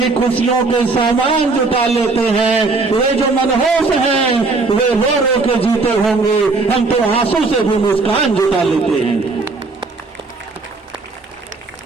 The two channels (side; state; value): left; quieter; 3.8 dB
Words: खुशियों के सामान जुटा लेते हैं। वे जो मनहूस हैं वे रो रो के जीते होंगे, हम तो आंसू से भी मुस्कान जुटा लेते हैं।